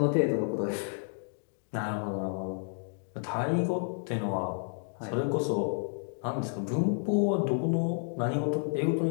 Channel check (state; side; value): silent; right; 57 dB below the other